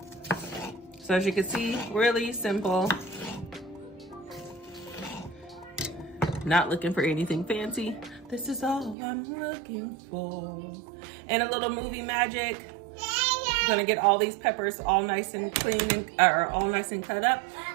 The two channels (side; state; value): left; drops out; at 9.0 s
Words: So as you can see, really simple. Not looking for anything fancy. This is all I'm looking for. And a little movie magic. I'm gonna get all these peppers all nice and clean and all nice and cut up,